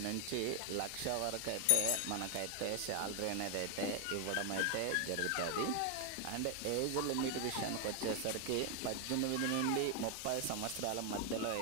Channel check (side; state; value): both; different; correlation 0.00